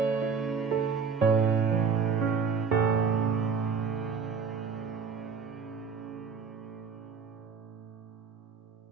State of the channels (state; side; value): quieter; left; 5.8 dB